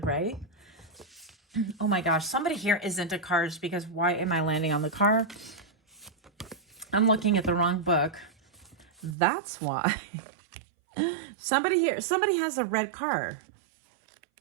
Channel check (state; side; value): drops out; left; at 9.2 s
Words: right? Oh my gosh, somebody here is into cars, because why am I landing on the car? I'm looking at the wrong book. That's why. Somebody has a red car.